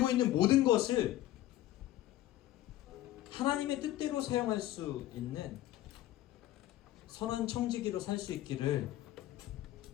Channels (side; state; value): right; quieter; 14.3 dB